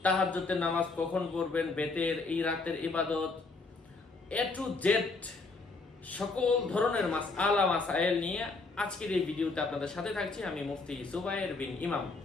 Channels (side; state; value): right; quieter; 3.8 dB